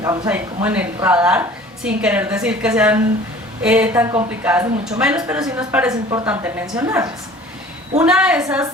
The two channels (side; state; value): both; normal; correlation 0.46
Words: ahí como en el radar, sin querer decir que sean tan complicadas ni mucho menos, pero sí nos parece importante mencionarlas. Una